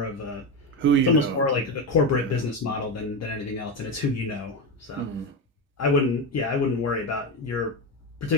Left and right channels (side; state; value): both; normal; correlation 0.15